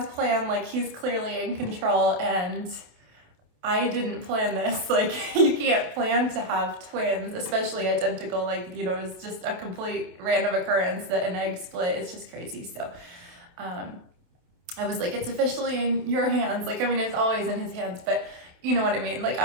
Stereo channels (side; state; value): left; late; 28 ms